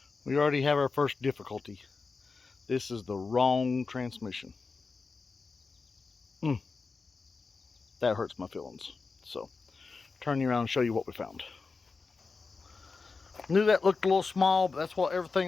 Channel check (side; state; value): right; quieter; 4.4 dB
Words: We already have our first difficulty. This is the wrong transmission. That hurts my feelings. So turn you around and show you what we found. Knew that looked a little small, but that's what